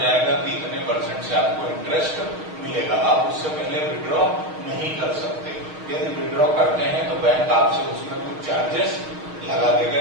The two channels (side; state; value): left; late; 6.4 ms